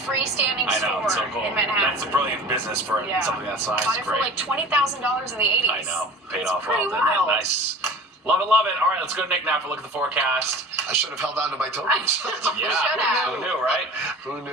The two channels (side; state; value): both; normal; correlation 0.39